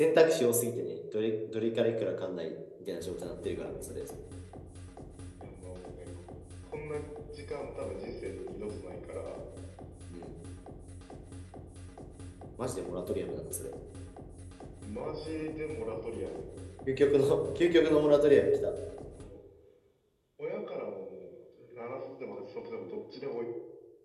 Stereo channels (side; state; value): both; identical; correlation 1.00